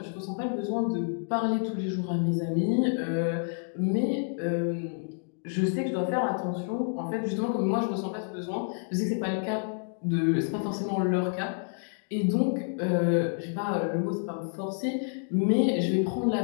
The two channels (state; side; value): silent; right; 59 dB below the other